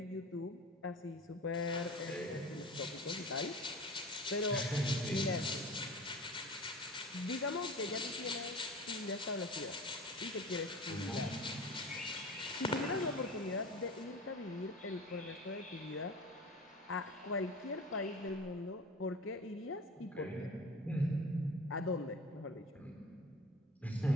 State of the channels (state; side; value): normal; both; correlation 0.36